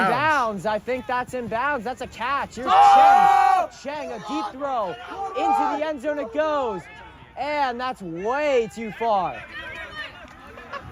in bounds. bounds? I think that's in bounds. That's a catch. Here's Cheng. Cheng, a deep throw. Into the end zone it goes. And that's way too far.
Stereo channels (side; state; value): both; identical; correlation 1.00